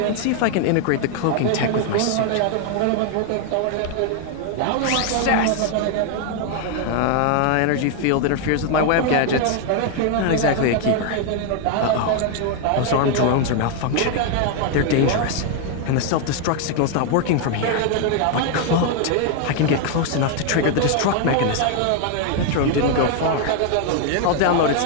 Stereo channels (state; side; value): different; both; correlation 0.00